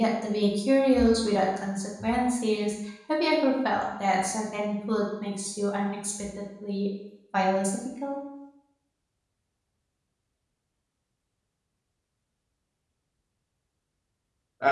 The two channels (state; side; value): identical; both; correlation 1.00